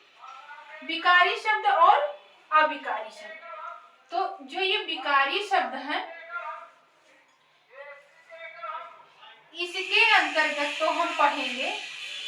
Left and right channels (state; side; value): identical; both; correlation 1.00